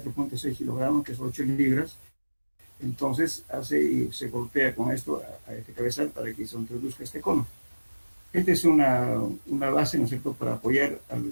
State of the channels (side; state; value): both; inverted; correlation -1.00